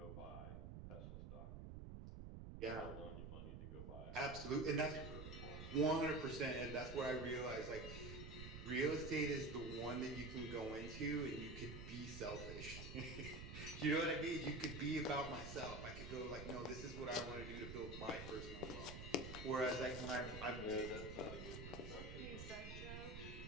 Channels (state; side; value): noise; right; rumble, 8 dB below the sound